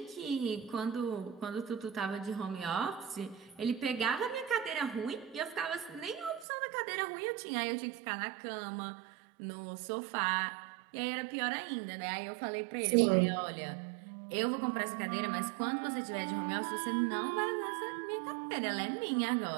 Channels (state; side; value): drops out; left; at 6.5 s